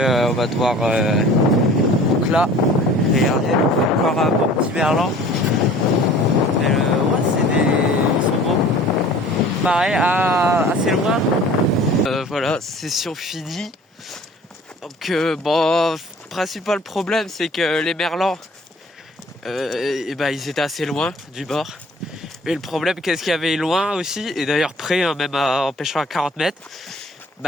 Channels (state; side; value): normal; both; correlation 0.48